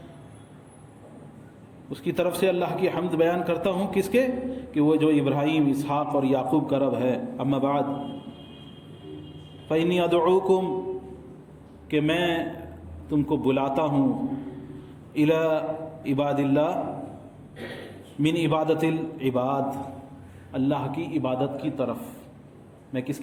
اس کی طرف سے اللہ کی حمد بیان کرتا ہوں، کس کے؟ کہ وہ جو ابراہیم، اسحاق اور یعقوب کا رب ہے۔ اما بعد فإنی ادعوکم، کہ میں تم کو بلاتا ہوں، الی عباد اللہ، من عبادت العباد، اللہ کی عبادت کی طرف۔ میں کس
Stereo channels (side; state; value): both; identical; correlation 1.00